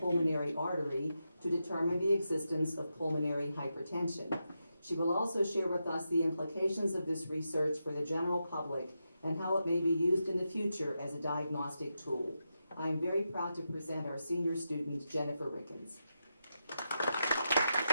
artery to determine the existence of pulmonary hypertension. She will also share with us the implications of this research for the general public and how it may be used in the future as a diagnostic tool. I am very proud to present our senior student, Jennifer Rickens.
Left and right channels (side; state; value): both; inverted; correlation -0.87